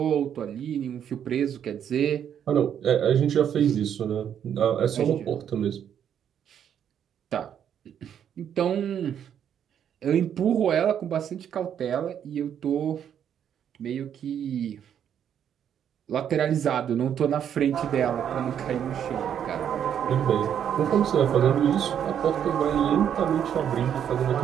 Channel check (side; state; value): left; quieter; 9.1 dB